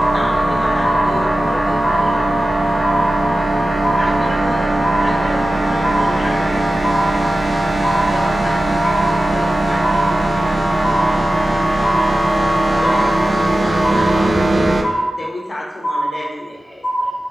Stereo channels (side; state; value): both; normal; correlation 0.95